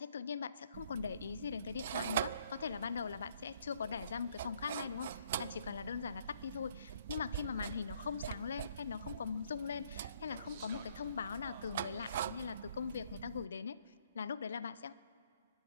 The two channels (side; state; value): both; inverted; correlation -0.66